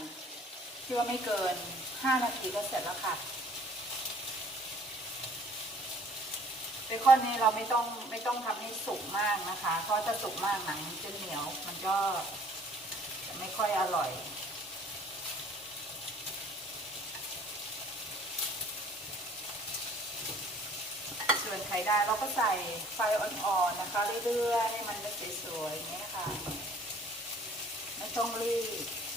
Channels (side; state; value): both; normal; correlation 0.54